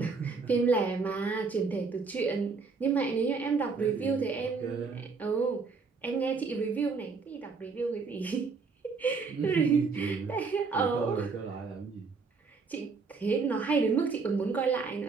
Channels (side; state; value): left; quieter; 4.7 dB